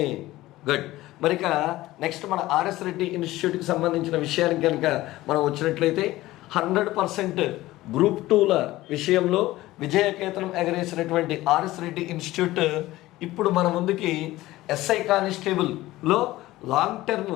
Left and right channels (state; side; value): quieter; right; 17.1 dB